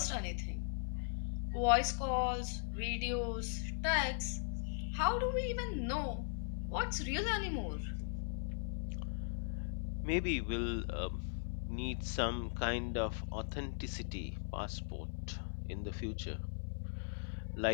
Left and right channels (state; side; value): silent; right; digital silence